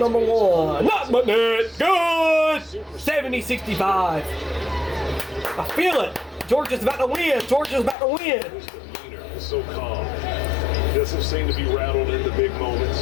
1. Not but net. Good! 70-65. I feel it. Georgia's about to win. So calm. Doesn't seem to be rattled in the big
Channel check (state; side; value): drops out; right; at 8.0 s